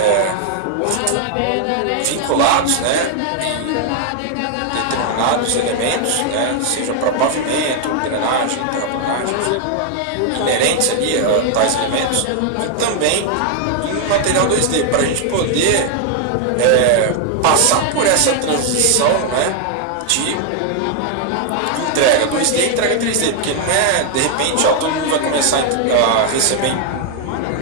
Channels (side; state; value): both; different; correlation 0.00